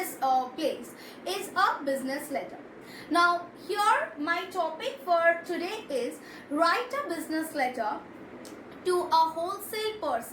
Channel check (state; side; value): identical; both; correlation 1.00